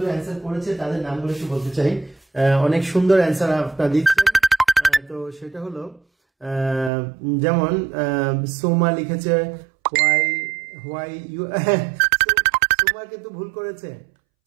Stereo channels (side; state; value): left; drops out; at 6.9 s